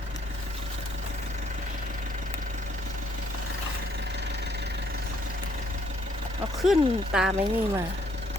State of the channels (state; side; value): normal; both; correlation 0.67